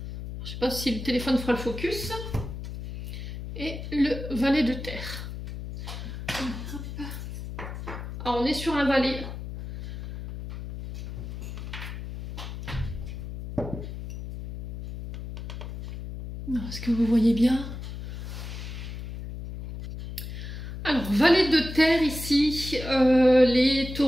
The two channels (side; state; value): left; noise; hum, 8 dB below the sound